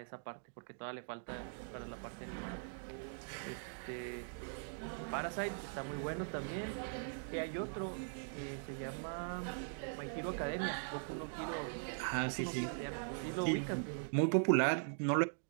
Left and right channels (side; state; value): left; silent; digital silence